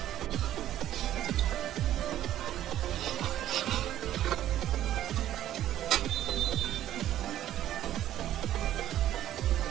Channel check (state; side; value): quieter; left; 12.5 dB